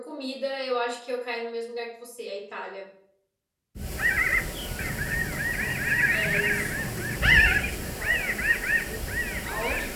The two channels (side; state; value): both; identical; correlation 1.00